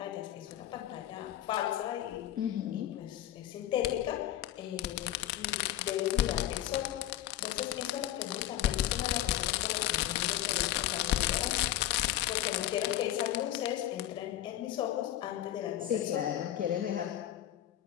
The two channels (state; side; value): quieter; right; 13.0 dB